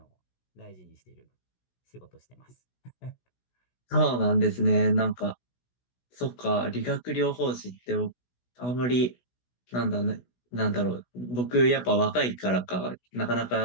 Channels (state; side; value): late; right; 16 ms